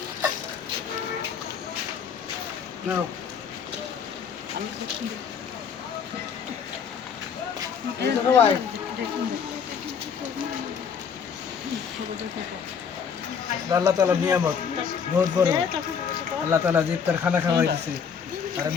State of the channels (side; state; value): right; quieter; 6.7 dB